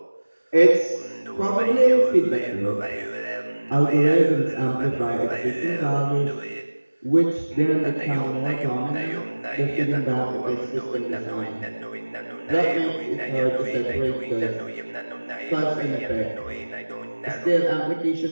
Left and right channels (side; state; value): both; inverted; correlation -1.00